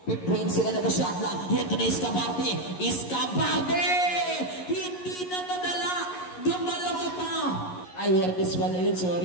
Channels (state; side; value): late; right; 11 ms